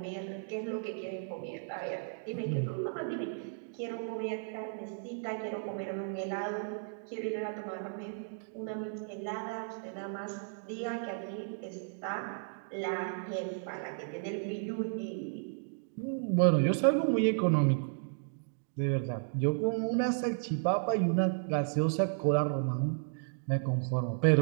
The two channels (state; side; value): silent; left; digital silence